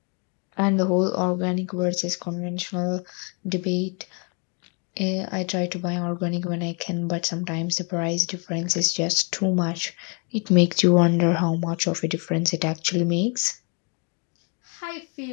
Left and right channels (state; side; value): quieter; right; 34.7 dB